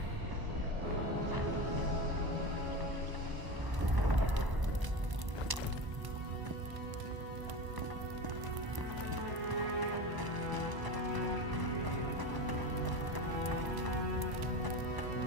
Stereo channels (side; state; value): left; late; 1.0 ms